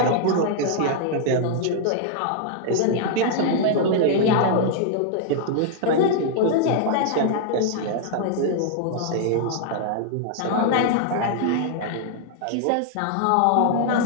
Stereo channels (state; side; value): different; both; correlation -0.01